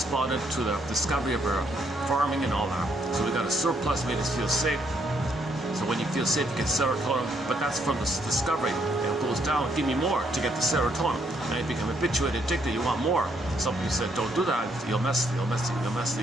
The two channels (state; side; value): normal; both; correlation 0.72